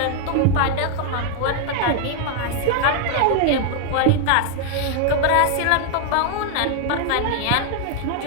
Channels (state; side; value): different; both; correlation 0.00